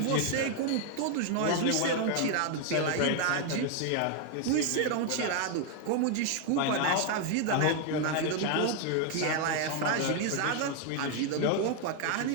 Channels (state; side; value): different; both; correlation 0.01